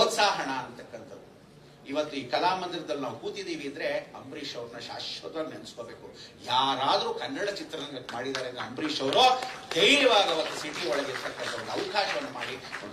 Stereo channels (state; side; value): identical; both; correlation 1.00